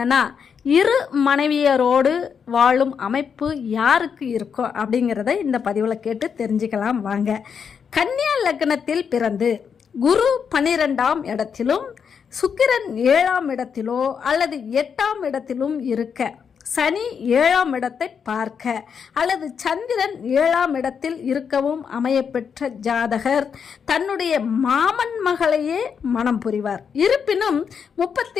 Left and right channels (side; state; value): right; quieter; 6.8 dB